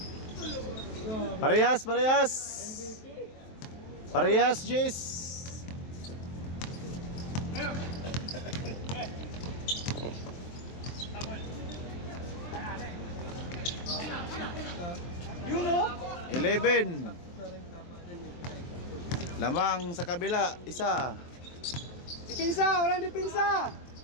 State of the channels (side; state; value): right; late; 23 ms